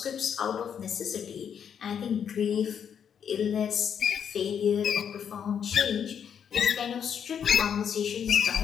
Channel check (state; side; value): quieter; right; 8.0 dB